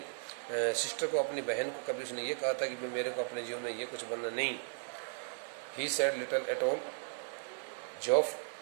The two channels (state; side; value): silent; left; digital silence